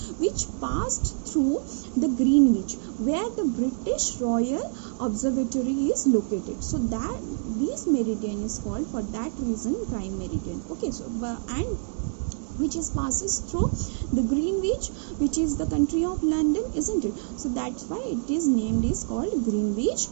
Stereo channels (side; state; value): left; silent; digital silence